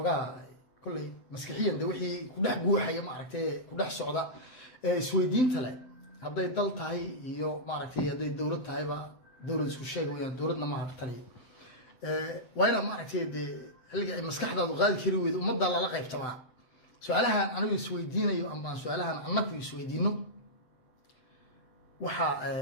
كل مسكحيا دوحي كده جوحي ما عرفتي كده صعدة سويدين تلا هذا يضل تاي يو ما عرفتي هذا الدولة تاي با دولة سوشيال ويا دولتنا ما عرفتي وين ما عرفتي اللي مسكح ده غادي كيروي ومضى على لقى اجتماع سؤالها أنا السويدين يو أما سؤالها أنا في السويدينو waxa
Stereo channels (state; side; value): late; right; 7.7 ms